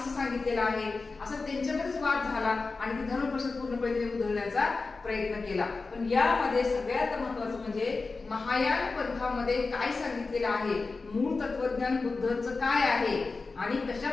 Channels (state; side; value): quieter; right; 4.0 dB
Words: सांगितलेलं आहे, असं त्यांच्यामध्येच वाद झाला आणि ती धर्म परिषद पूर्णपणे उधळण्याचा प्रयत्न केला. पण यामध्ये सगळ्यात महत्वाचं म्हणजे महायान पंथामध्ये काय सांगितलेलं आहे, मूळ तत्वज्ञान बुद्धांचं काय आहे आणि कशा